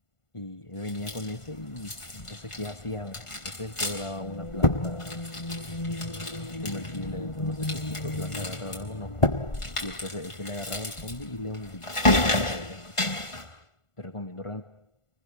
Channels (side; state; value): right; late; 1.5 ms